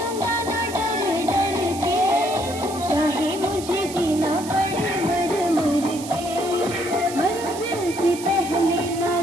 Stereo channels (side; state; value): right; noise; hiss, 13 dB below the sound